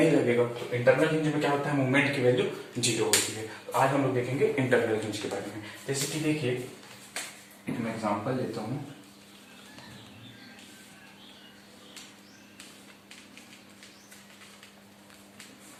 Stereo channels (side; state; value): both; identical; correlation 1.00